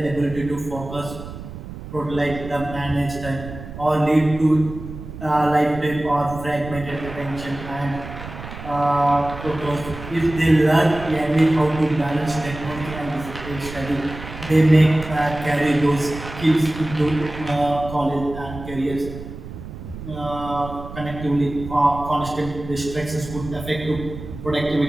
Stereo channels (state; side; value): noise; right; rumble, 12 dB below the sound